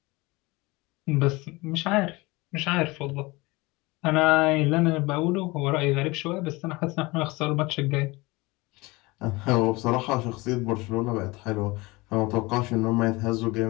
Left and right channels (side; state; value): right; quieter; 23.2 dB